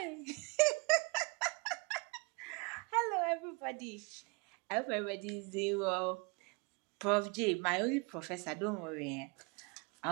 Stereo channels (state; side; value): quieter; left; 30.6 dB